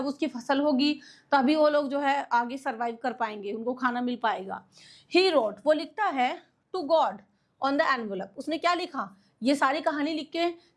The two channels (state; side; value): identical; both; correlation 1.00